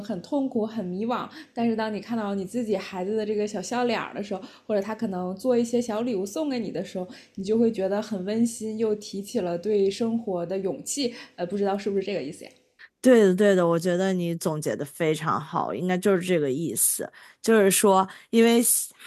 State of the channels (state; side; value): identical; both; correlation 1.00